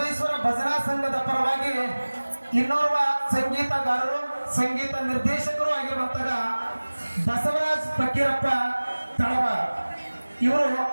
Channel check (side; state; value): both; inverted; correlation -1.00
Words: ಭಜನಾ ಸಂಘದ ಪರವಾಗಿ ಇನ್ನೋರ್ವ ಸಂಗೀತಗಾರರು, ಸಂಗೀತ ನಿರ್ದೇಶಕರು ಆಗಿರುವಂತಹ ಬಸವರಾಜ್ ಫಕೀರಪ್ಪ ತಳವಾರ್ ಇವರು